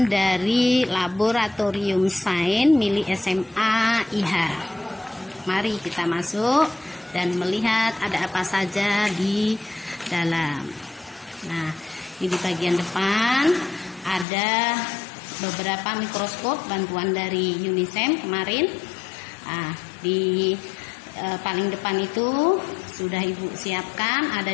dari laboratorium sains milik SMA IH. Mari kita masuk dan melihat ada apa saja di dalam. Nah, ini di bagian depan ada beberapa mikroskop bantuan dari UNISEM kemarin. Nah, di paling depan itu sudah Ibu siapkan, ada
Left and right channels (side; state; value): right; drops out; at 14.2 s